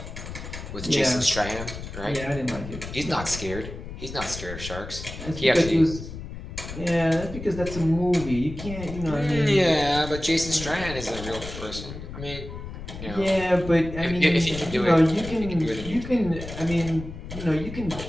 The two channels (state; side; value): noise; left; rumble, 10 dB below the sound